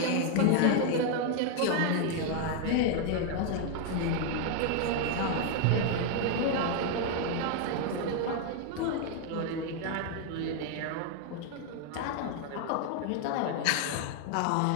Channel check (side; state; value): both; different; correlation 0.00